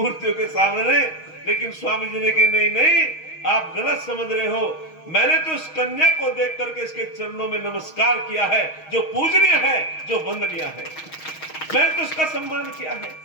के सामने। लेकिन स्वामी जी ने कहा, नहीं नहीं, आप गलत समझ रहे हो। मैंने तो इस कन्या को देख करके इसके चरणों में नमस्कार किया है, जो पूजनीय है, जो वंदनीय है। मैंने तो इसका सम्मान किया है।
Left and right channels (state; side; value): late; right; 6.3 ms